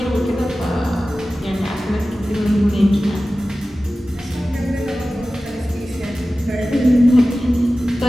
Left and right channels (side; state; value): both; normal; correlation 0.95